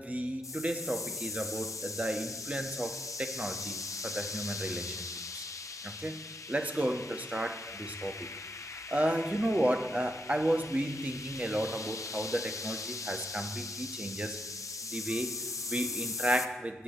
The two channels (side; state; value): both; normal; correlation 0.80